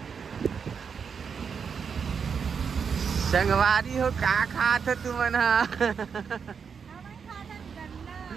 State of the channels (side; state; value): left; quieter; 6.4 dB